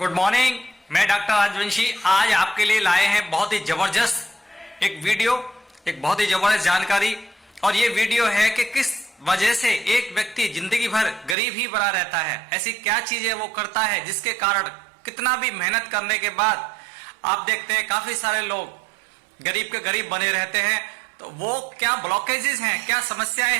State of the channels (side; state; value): left; drops out; at 11.4 s